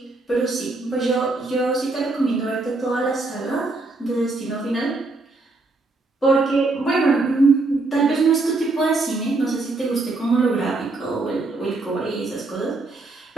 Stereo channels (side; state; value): left; quieter; 3.3 dB